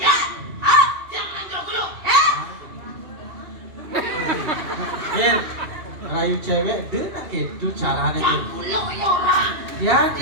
Ah, Jangan jeruk gulung. Mir, rayu cewek dengan itu caranya. Yang gulung ya orang.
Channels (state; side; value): late; left; 2.8 ms